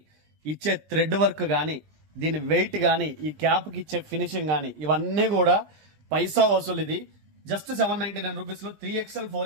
ఇచ్చే థ్రెడ్ వర్క్ గాని, దీని వెయిట్ గాని, ఈ క్యాప్ కి ఇచ్చే ఫినిషింగ్ గాని, ఇవన్నీ కూడా పైసా వసూలు. ఇది జస్ట్ 799 రూపీస్ లో 3XL,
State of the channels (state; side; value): late; left; 20 ms